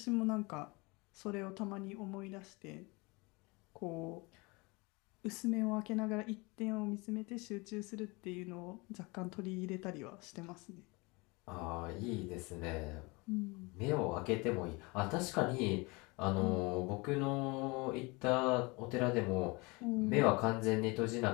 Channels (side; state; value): right; quieter; 26.6 dB